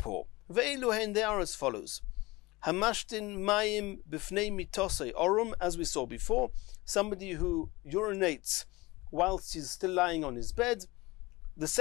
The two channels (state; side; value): quieter; right; 21.8 dB